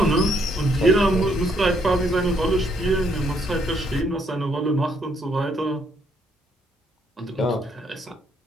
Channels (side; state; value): both; normal; correlation 0.71